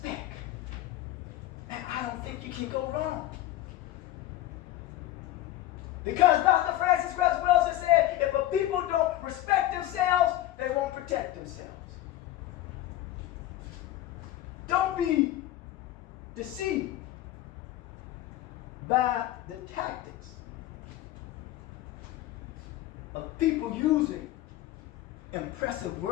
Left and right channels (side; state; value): right; quieter; 14.6 dB